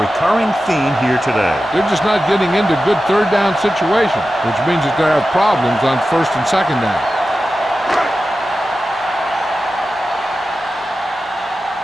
recurring theme here today. They're just not getting into good 3rd down situations, which means that they have problems on 1st and 2nd down.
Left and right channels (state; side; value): normal; both; correlation 0.93